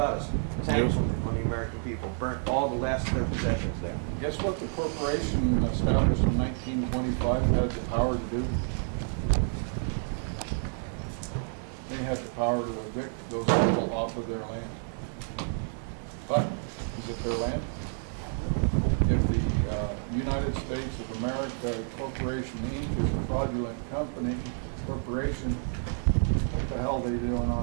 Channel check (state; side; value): silent; left; 57 dB below the other